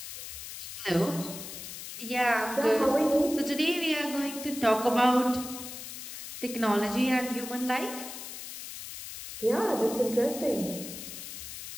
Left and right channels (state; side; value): noise; left; hiss, 10 dB below the sound